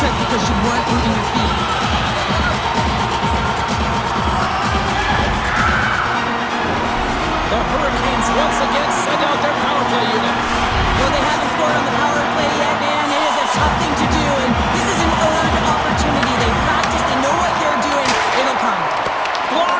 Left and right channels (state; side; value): identical; both; correlation 1.00